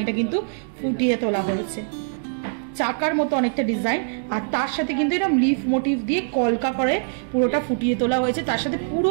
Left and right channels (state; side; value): silent; left; digital silence